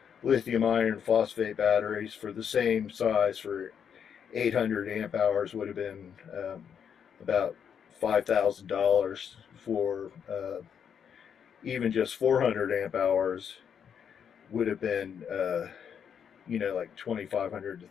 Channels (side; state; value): right; quieter; 7.8 dB